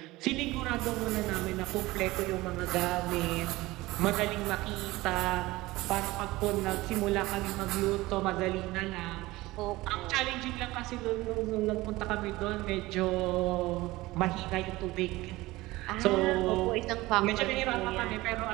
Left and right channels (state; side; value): quieter; left; 19.5 dB